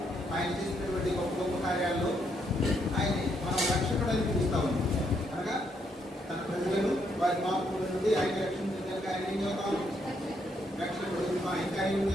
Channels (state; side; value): normal; both; correlation 0.75